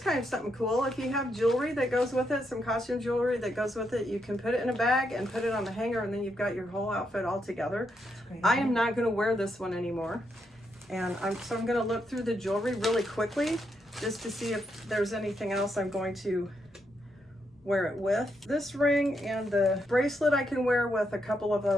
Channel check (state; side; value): normal; both; correlation 0.80